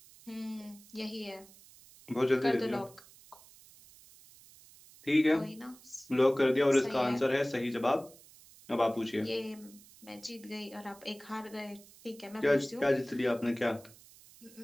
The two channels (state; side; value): noise; right; hiss, 23 dB below the sound